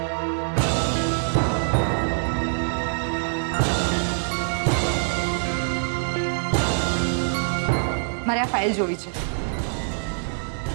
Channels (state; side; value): silent; left; digital silence